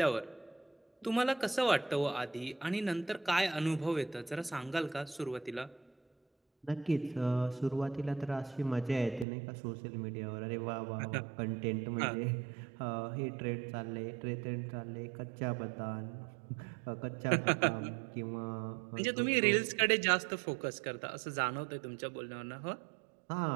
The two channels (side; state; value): left; drops out; at 9.2 s